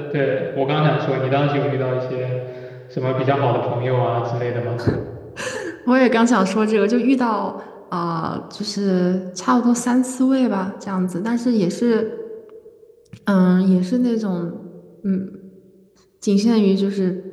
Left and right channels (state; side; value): identical; both; correlation 1.00